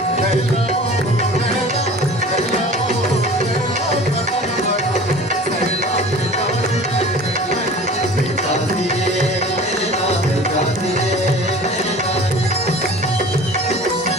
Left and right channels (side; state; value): both; normal; correlation 0.42